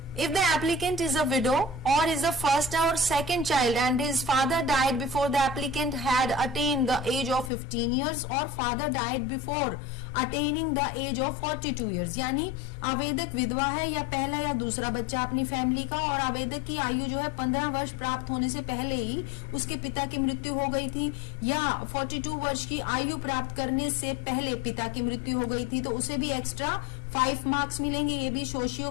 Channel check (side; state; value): right; drops out; at 7.5 s